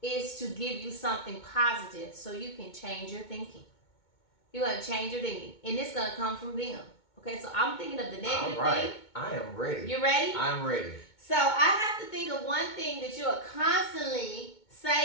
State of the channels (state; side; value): late; right; 2.2 ms